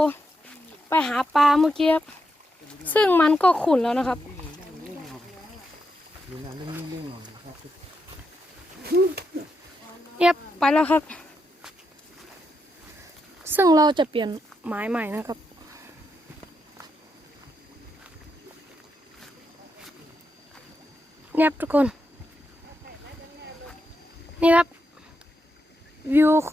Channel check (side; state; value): both; normal; correlation 0.83